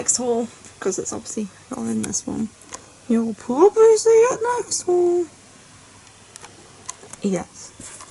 haul, because it's obviously not in this one. You'll probably see it next haul. Yes.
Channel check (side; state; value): both; identical; correlation 1.00